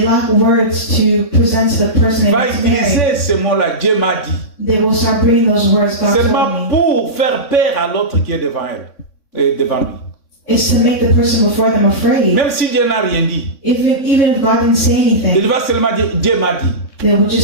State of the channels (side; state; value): right; late; 3.6 ms